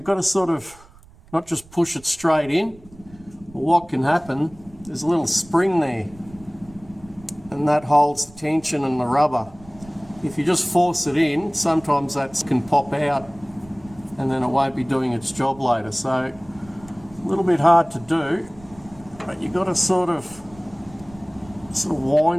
got to sort of not just push it straight in. But what can happen, there's a little spring there, and that holds the tension and the rubber. If you just force it in, sometimes that can pop out and then it won't be doing its job later. So a little bit hard to do, but you've got to sort of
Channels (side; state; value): right; noise; rumble, 23 dB below the sound